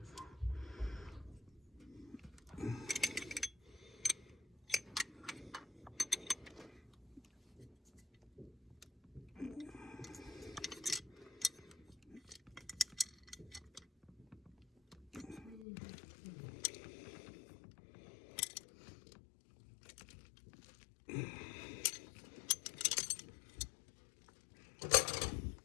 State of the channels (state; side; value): drops out; right; at 15.7 s